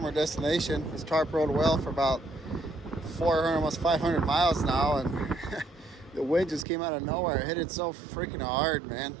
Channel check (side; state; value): left; drops out; at 6.7 s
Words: our destination. This tarp rode well for about 400, almost 500 miles now, and the wind just came out of nowhere. It hit it so freaking hard, man.